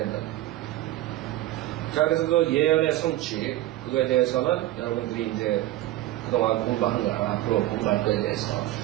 자, 그래서 그 예언의 성취, 그거에 대해서는 여러분들이 이제 그동안 공부한 거나 앞으로 공부할 거에 대해서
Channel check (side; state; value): left; quieter; 15.4 dB